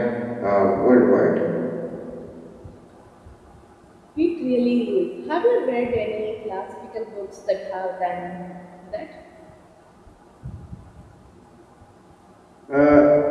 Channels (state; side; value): identical; both; correlation 1.00